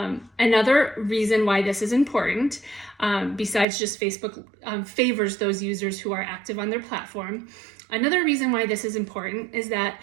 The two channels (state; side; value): drops out; left; at 3.7 s